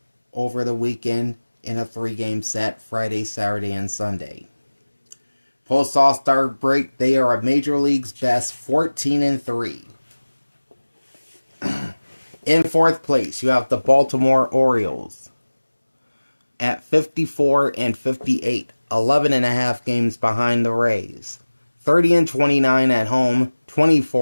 over the weekend in a 3-game set, Friday, Saturday, and Sunday. Post All-Star break, they are a Major League's best 14-3. In 4th place, you have the Baltimore Orioles at 54-58, 11.5 games behind the Rays. 30-29 at home,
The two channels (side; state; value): both; inverted; correlation -1.00